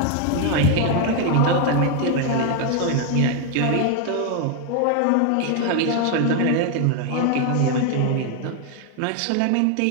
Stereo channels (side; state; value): both; different; correlation 0.01